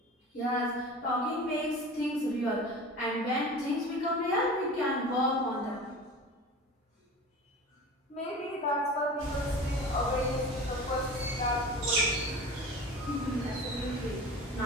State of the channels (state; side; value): normal; both; correlation 0.35